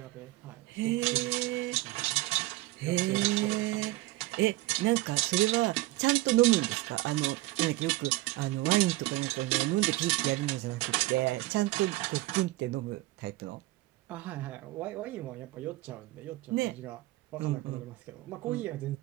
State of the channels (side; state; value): left; quieter; 18.2 dB